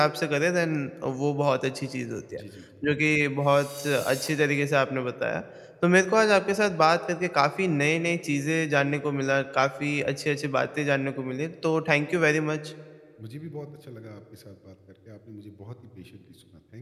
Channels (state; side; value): identical; both; correlation 1.00